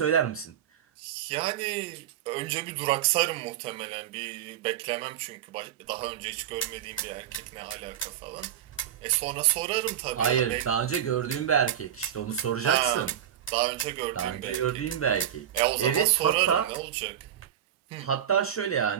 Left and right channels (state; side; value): quieter; left; 10.4 dB